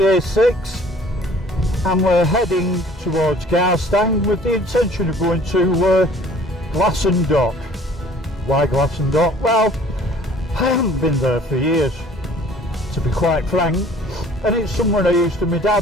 A6 and we're heading towards Glasson with the intention of going to Glasson Dock. Why Glasson Dock? Well, I haven't been there for years, to be quite frank, and it's somewhere I used to. My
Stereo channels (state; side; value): normal; both; correlation 0.52